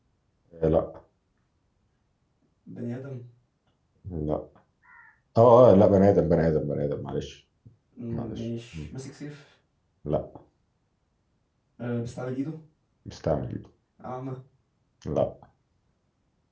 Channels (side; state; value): both; identical; correlation 1.00